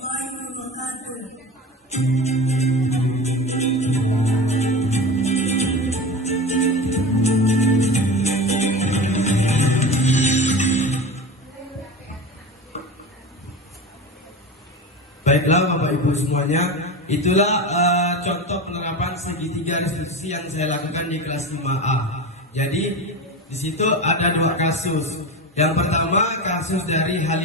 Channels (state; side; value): normal; both; correlation 0.28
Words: wabarakatuh. Baiklah Bapak Ibu semuanya, itulah contoh penerapan segitiga restitusi yang saya lakukan di kelas 5A. Jadi di situ ada dua kasus. Yang pertama kasus dari